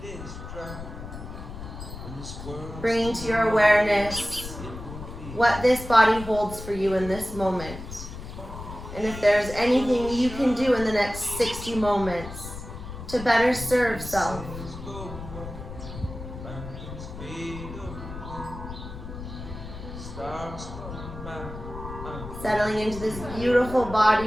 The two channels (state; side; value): noise; left; rumble, 11 dB below the sound